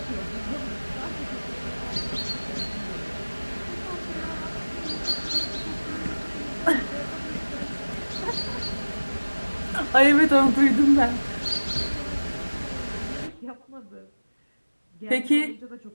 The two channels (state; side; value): inverted; both; correlation -1.00